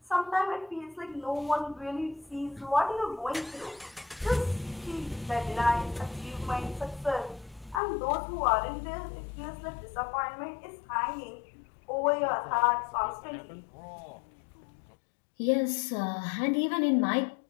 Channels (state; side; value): drops out; right; at 7.8 s